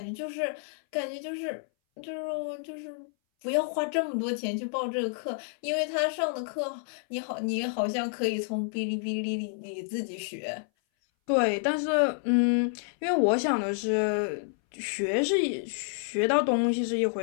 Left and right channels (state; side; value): silent; right; 58 dB below the other